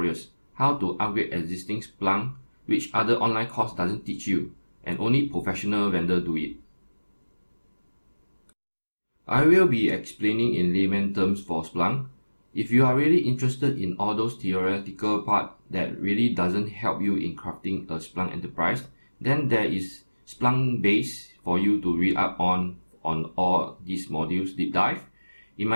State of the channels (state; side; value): inverted; both; correlation -1.00